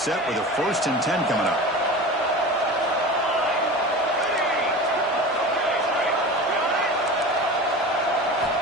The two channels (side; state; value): both; normal; correlation 0.33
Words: with a 1st and 10 coming up.